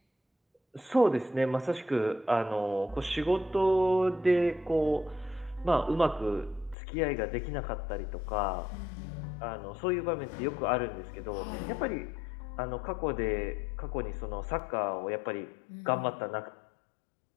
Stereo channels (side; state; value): right; drops out; at 6.8 s